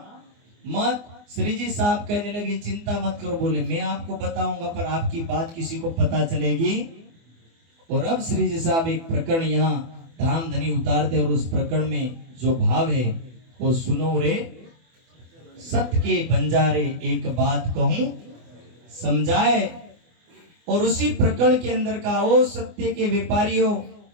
मत। श्री जी साहब कहने लगे चिंता मत करो, बोले मैं आपको बताऊंगा पर आपकी बात किसी को पता चलेगी। और अब श्री जी साहब एक प्रकरण यहाँ धाम धनी उतारते, और उस प्रकरण में जो भाव है वो सुनो रे, सत्य के बंजारे एक बात कहूं समझाए। और उसी प्रकरण के अंदर का, ओ सत्य के व्यापारियों,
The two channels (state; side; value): late; left; 24 ms